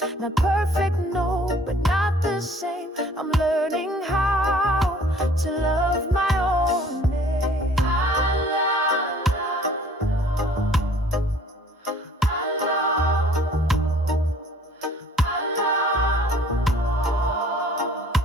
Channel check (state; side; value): normal; both; correlation 0.54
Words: Not perfect, no, but not the same. I'm learning how to love my own name.